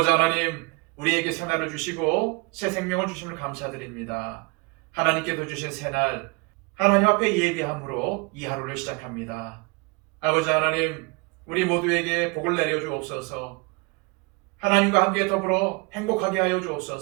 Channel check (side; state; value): left; quieter; 28.7 dB